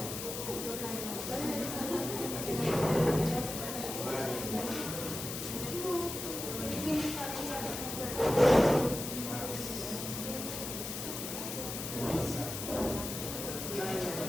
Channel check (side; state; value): left; noise; hiss, 6 dB below the sound